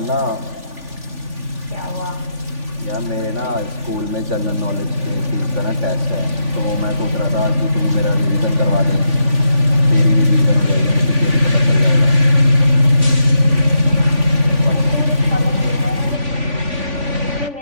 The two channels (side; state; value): left; late; 3.5 ms